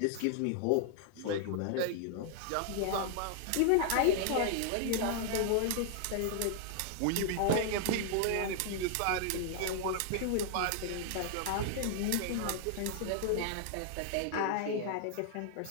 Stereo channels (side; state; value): both; different; correlation 0.00